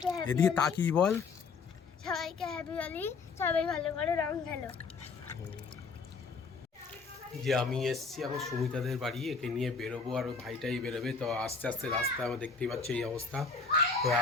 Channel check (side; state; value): right; quieter; 4.8 dB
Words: হ্যাপি এদিকে হোলি। তাকিয়ে বল সবাইকে হ্যাপি হোলি, সবাই ভালো করে রং খেলো। যে আমি এসছি এখন সুমিতাদের বাড়ি, একে নিয়ে বেরোবো, আর ওই ভাইটাই বেরোবে। তো আস্তে আস্তে রাস্তায় আমার দেখতেই পাচ্ছি এই অবস্থা। তো